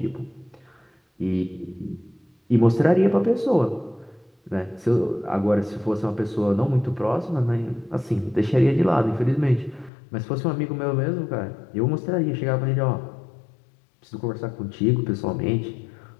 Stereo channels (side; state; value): right; drops out; at 9.9 s